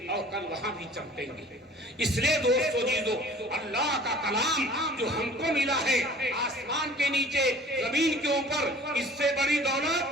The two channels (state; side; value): normal; both; correlation 0.48